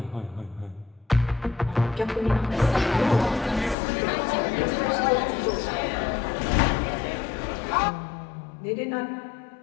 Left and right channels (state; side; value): drops out; right; at 3.8 s